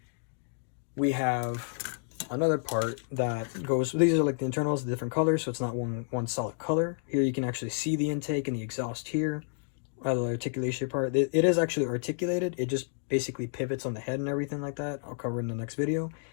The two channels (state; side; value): silent; right; digital silence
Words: we have another part that goes, these are like the internals, the different colors, so it's not one solid color. Here you can actually see the intake and the exhaust here. The articulation part, it is actually articulated. It just basically pivots on the head and everything like that. I'll cover in the next video.